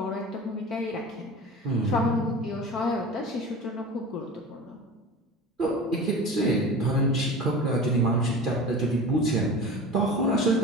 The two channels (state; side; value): normal; both; correlation 0.34